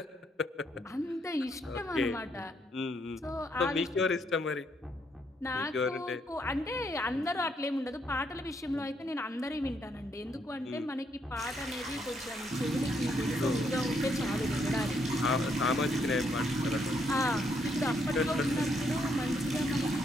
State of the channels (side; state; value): both; normal; correlation 0.74